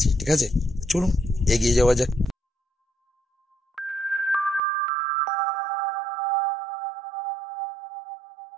ঠিক আছে? চলুন এগিয়ে যাওয়া যাক।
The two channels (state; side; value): drops out; left; at 4.6 s